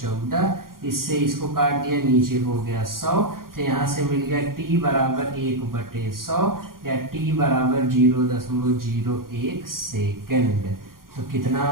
इससे इसको काट दिया, नीचे हो गया 100। तो यहाँ से मिल गया t बराबर 1/100 या t बराबर 0.01 सेकेंड। तो कितना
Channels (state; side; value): late; left; 0.91 ms